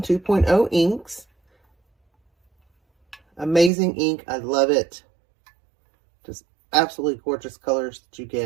2.0 inks. Amazing ink. I love it. Just absolutely gorgeous colors that you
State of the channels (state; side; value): drops out; left; at 3.7 s